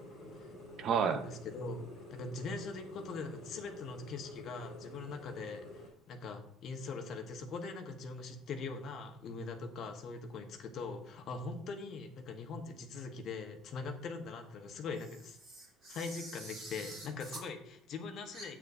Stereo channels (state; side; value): normal; both; correlation 0.54